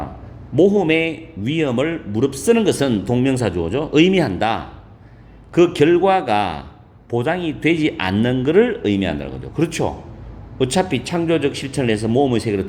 모험의 위험을 무릅쓰는 것은 동명사 주어죠. 의미한다. 그 결과가 보장이 되지 않는 것을 의미한다는 거죠. 그렇죠. 어차피 창조적 실천을 해서 모험의 세계로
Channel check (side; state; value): both; identical; correlation 1.00